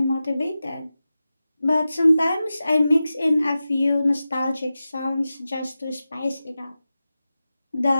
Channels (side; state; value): both; inverted; correlation -0.94